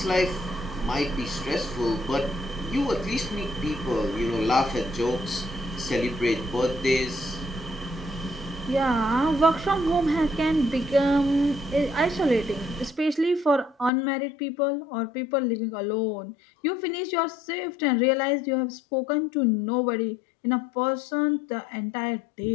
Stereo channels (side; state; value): right; drops out; at 13.9 s